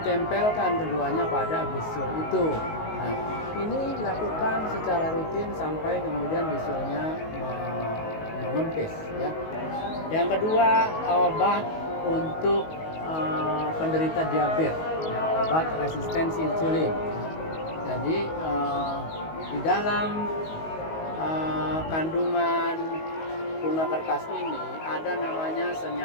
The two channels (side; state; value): right; late; 19 ms